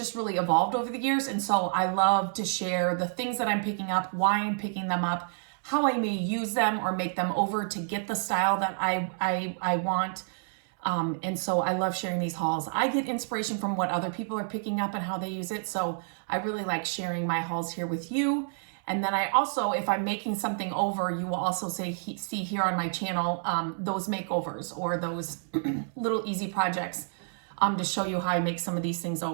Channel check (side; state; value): left; silent; 59 dB below the other